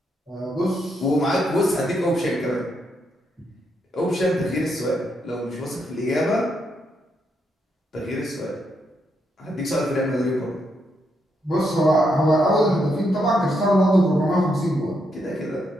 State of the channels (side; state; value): both; normal; correlation 0.79